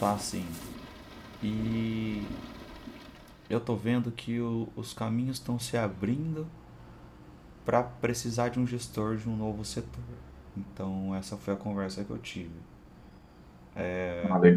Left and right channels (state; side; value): identical; both; correlation 1.00